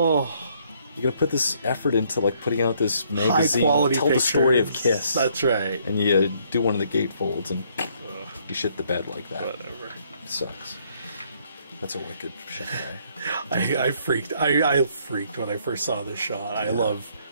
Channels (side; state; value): both; inverted; correlation -0.67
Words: You're gonna put this effort into like putting out this magazine, High-quality tell the story of pictures. Kiss. That's right. And you do one of the gatefolds and you shit the bed like that. Whatever. It sucks. That's a wicked shot. I freaked. I freaked when I first saw this shot. I love